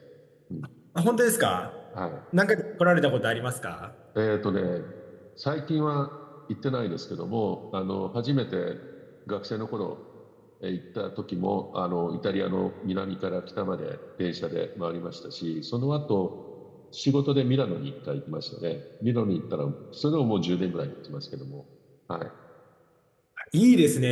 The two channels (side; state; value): both; identical; correlation 1.00